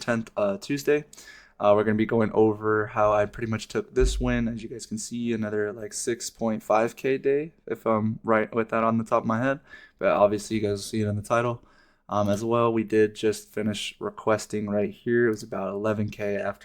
Tuesday. We're going to be going over how I pretty much took this win. As you guys can see, another like 6.5K day, if I'm right with that on the top of my head. But obviously, you guys see it in the title. As well, we did just finish requesting right here. It was about 11K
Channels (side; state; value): both; identical; correlation 1.00